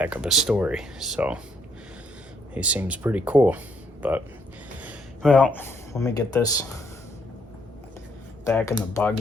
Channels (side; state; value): both; normal; correlation 0.71